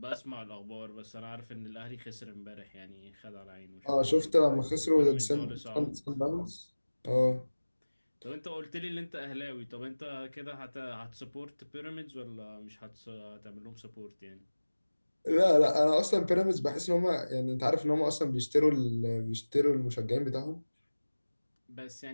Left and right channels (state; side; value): inverted; both; correlation -1.00